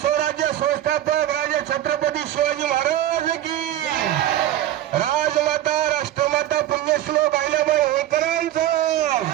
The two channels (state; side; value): quieter; left; 12.9 dB